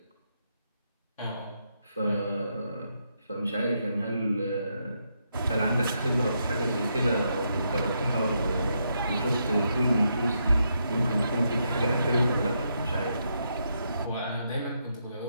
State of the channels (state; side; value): inverted; both; correlation -0.80